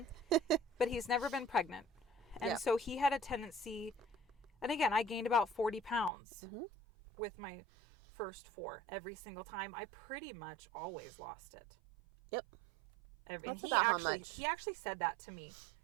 but he's never been pregnant. And so he had a tendency, and again, I gained about 40 pounds with my first 4 every single time. I pretty much always lost it. Yep. And he actually said that to me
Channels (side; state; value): left; drops out; at 6.1 s